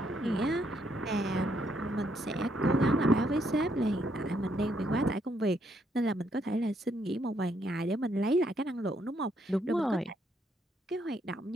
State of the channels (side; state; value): both; normal; correlation 0.73